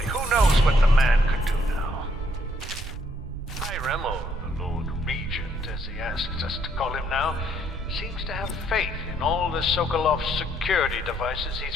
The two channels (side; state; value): right; noise; rumble, 7 dB below the sound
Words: Who knows what the man could do now? High Remmel, the Lord Regent, as he asks us to call him now, seems to have faith in all the Sokolov security devices